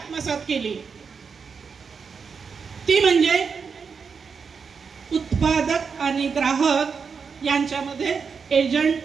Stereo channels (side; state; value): left; quieter; 5.7 dB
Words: केली, ती म्हणजे उत्पादक आणि ग्राहक यांच्यामध्ये एजंट